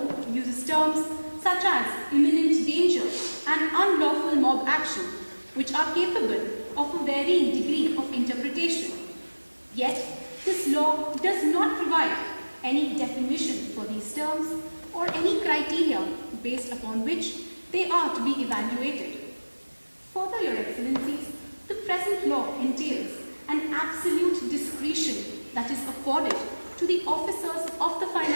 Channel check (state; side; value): inverted; both; correlation -1.00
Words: uses terms such as imminent danger and unlawful mob action, which are capable of a varying degree of interpretation. Yet, this law does not provide any definition for these terms or any criteria based upon which they are to be evaluated. Further, Your Excellencies, the present law entails an absolute discretion that is afforded to the officers of the